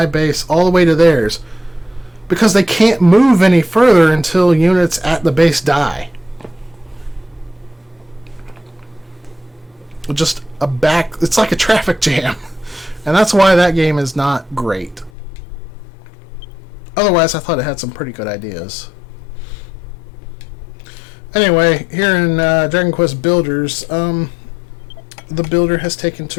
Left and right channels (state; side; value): drops out; right; at 15.1 s